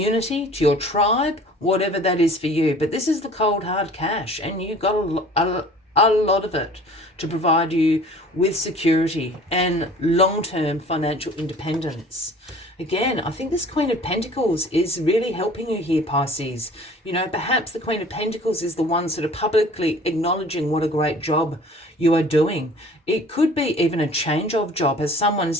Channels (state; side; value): normal; both; correlation 0.48